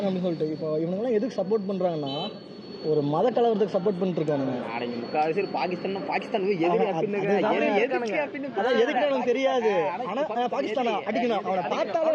அப்படின்னு சொல்லிட்டு. இப்போ இவனுங்கெல்லாம் எதுக்கு சப்போர்ட் பண்ணுறாங்கன்னா ஒரு மத கலவரத்துக்கு சப்போர்ட் பண்ணிட்டு இருக்கானுங்க. அடங்கி முக்கால்வாசி பாகிஸ்தான் எதிரி அதான் எதுக்கு எனக்கு தெரியாது. ஆனா பாகிஸ்தானா அடிக்கணும், அவனை பார்த்தாலும்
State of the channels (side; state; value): both; identical; correlation 1.00